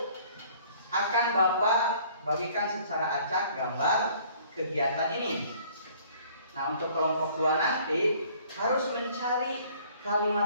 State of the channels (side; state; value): both; inverted; correlation -0.56